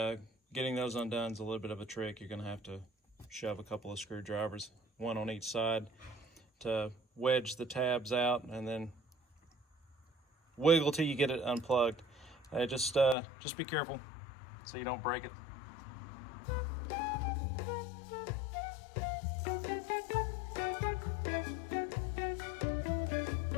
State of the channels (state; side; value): drops out; right; at 13.2 s